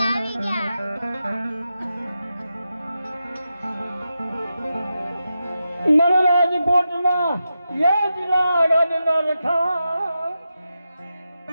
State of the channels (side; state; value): both; inverted; correlation -0.89